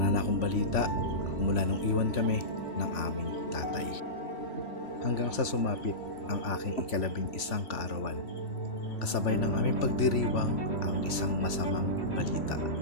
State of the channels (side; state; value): right; late; 3.0 ms